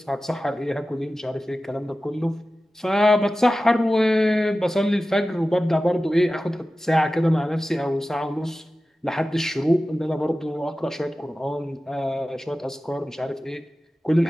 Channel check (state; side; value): normal; both; correlation 0.95